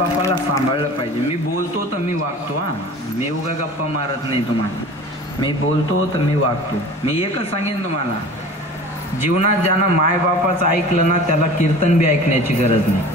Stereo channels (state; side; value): normal; both; correlation 0.40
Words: सांभाळलं पाहिजे. मी बोलतो तर मी वागतो. मी उगा गप्पा मारत नाही तुम्हाला. मी बोलतो तर मी वागतो. मी एकच सांगेन तुम्हाला, जीवनात ज्यानं मायबापाचं ऐकलं ना त्याला कीर्तन बी ऐकण्याची गरज नाही.